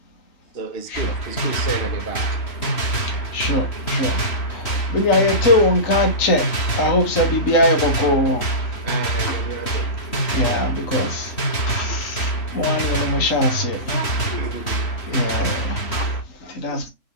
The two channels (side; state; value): right; late; 3.1 ms